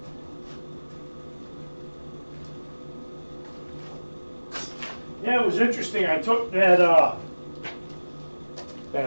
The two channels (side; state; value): both; inverted; correlation -1.00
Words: Yeah, it was interesting. I took that